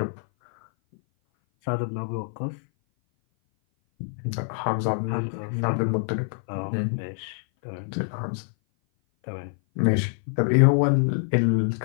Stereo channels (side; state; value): right; silent; 57 dB below the other